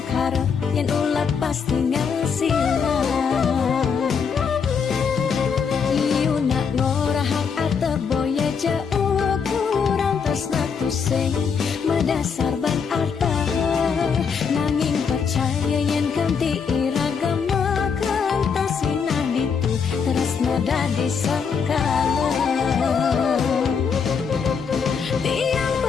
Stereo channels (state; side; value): quieter; right; 6.2 dB